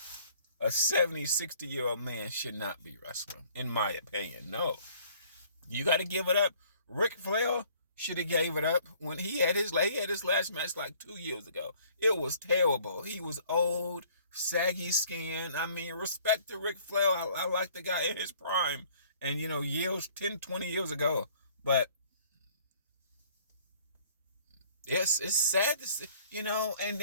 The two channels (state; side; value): inverted; both; correlation -0.57